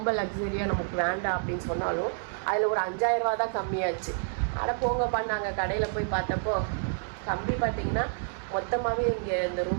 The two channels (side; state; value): left; silent; 59 dB below the other